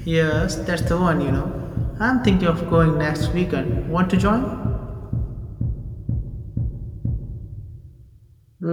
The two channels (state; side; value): identical; both; correlation 1.00